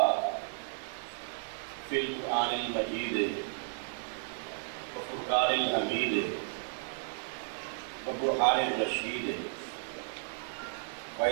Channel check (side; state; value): left; silent; digital silence